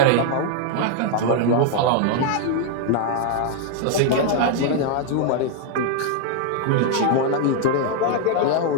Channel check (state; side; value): different; both; correlation 0.00